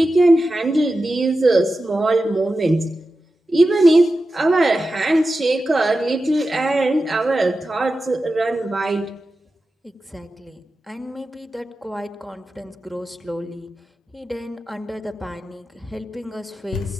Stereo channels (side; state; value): both; normal; correlation 0.92